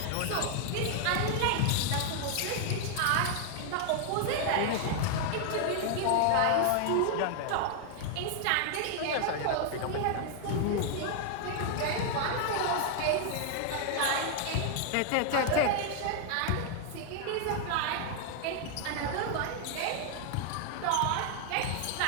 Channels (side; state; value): both; different; correlation 0.00